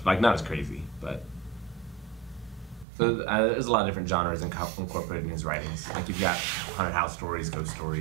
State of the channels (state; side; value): drops out; left; at 2.9 s